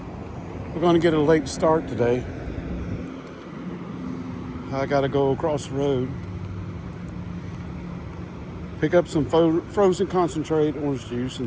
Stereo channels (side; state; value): both; identical; correlation 1.00